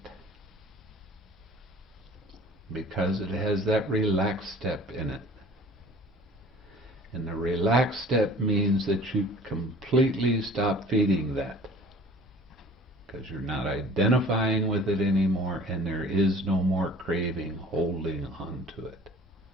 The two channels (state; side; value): normal; both; correlation 0.48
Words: because it has that relaxed step in it. And the relaxed step means that you completely stop feeding that. because you're not identifying with it anymore, and there is no more craving holding on to it.